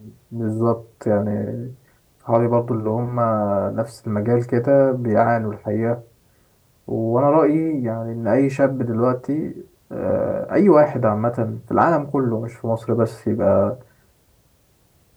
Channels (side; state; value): both; identical; correlation 1.00